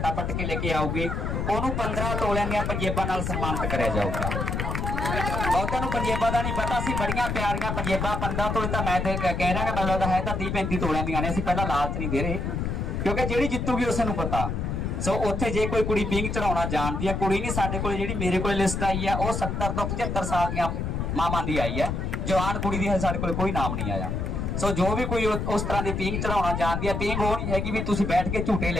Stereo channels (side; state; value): left; noise; rumble, 2 dB below the sound